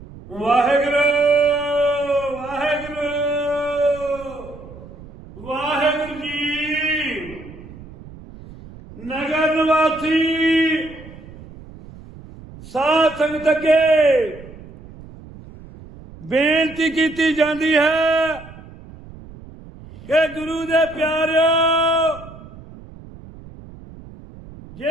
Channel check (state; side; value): noise; right; rumble, 18 dB below the sound